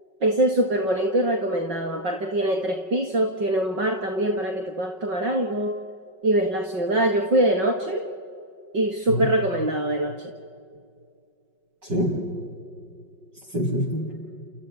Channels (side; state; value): left; late; 5.4 ms